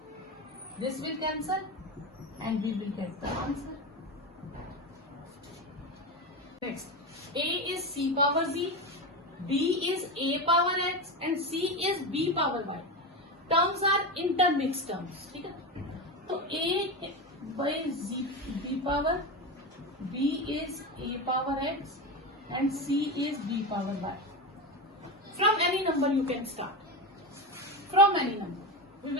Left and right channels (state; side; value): normal; both; correlation 0.19